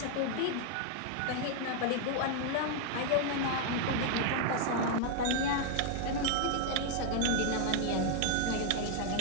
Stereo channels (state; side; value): different; both; correlation 0.00